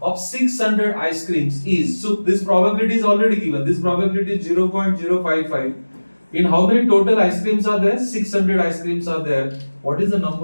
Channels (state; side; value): inverted; both; correlation -1.00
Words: of 600 ice creams is, so this probability is already given. This probability is 0.055. In how many total ice creams are there? 600 ice creams are there. What is the